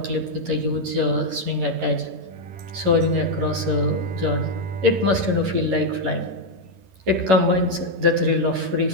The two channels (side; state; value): left; late; 11 ms